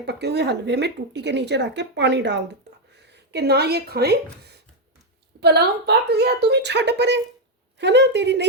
पके हुए हलवे में टूटी के नीचे रख के पानी डाल दिता कि ना ये खाएं, पलाव पक गया, तू भी छड़ परे, है ना, तेरी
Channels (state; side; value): normal; both; correlation 0.02